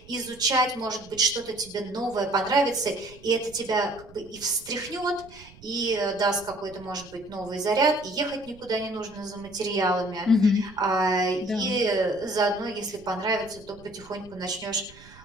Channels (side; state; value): right; noise; rumble, 22 dB below the sound